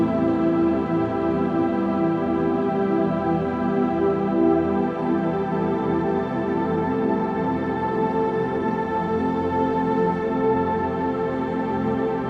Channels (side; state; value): both; identical; correlation 1.00